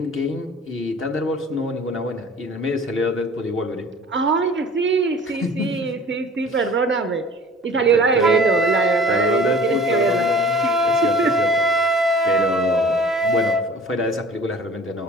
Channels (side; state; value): both; normal; correlation 0.46